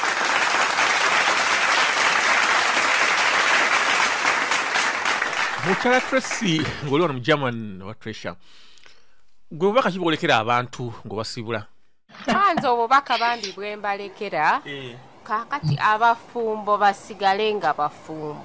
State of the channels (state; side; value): identical; both; correlation 1.00